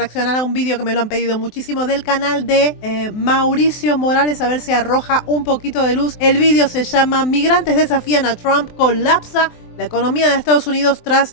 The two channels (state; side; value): late; right; 23 ms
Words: a un vídeo que me lo han pedido muchísimo del canal de Mauricio Morales, a ver si arroja un poquito de luz. El vídeo se llama Migrantes desafían a Trump, colapsa la economía de Estados Unidos